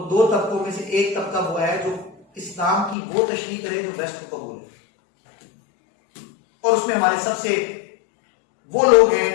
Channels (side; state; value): right; drops out; at 3.0 s